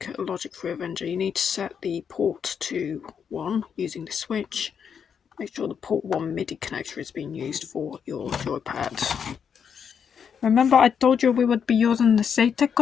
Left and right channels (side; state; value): right; quieter; 7.2 dB